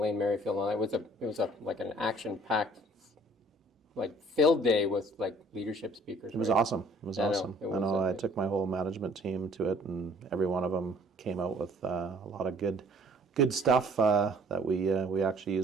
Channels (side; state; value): both; normal; correlation 0.56